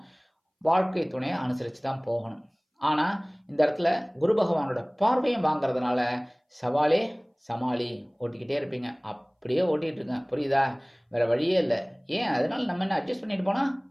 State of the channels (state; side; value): identical; both; correlation 1.00